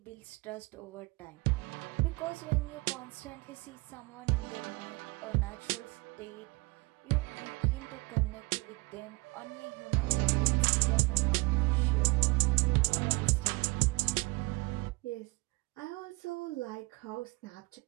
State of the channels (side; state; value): left; quieter; 25.1 dB